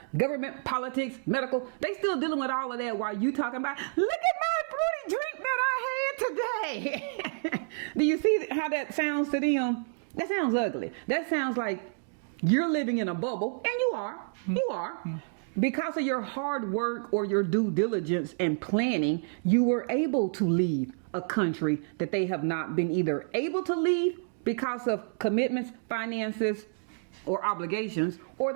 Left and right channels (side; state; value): left; silent; digital silence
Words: government, politics, medical. They still dealing with all of that while you talking about, look at my fruity drink that I had today. Do you see how that sounds to them? That sounds ugly. That sounds like you're living in a bubble, and you are. You are. Because of your hard work or your due diligence and planning, you were able to leave a country that they have not been either able to leave because of commitments, finances, or obligations, or